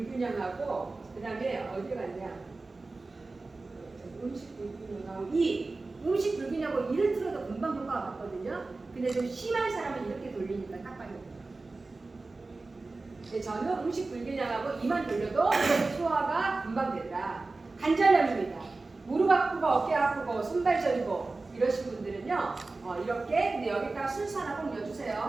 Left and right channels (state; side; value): quieter; left; 3.5 dB